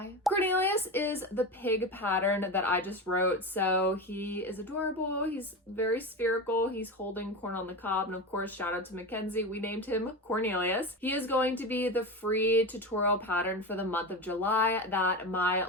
CORNelius is the pig pattern that I just wrote. So he is adorable. He's very spherical. He's holding corn on the cob. And of course, shout out to Mackenzie. We named him CORNelius. He is going to be the free tutorial pattern for the month of July that my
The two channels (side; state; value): both; normal; correlation 0.22